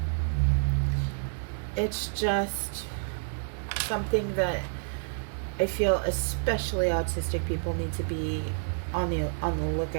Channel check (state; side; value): silent; left; 59 dB below the other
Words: it's just something that I feel especially autistic people need to be on the